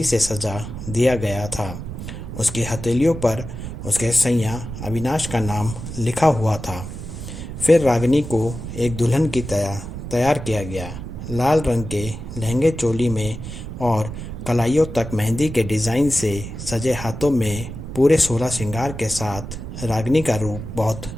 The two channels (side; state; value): right; noise; rumble, 9 dB below the sound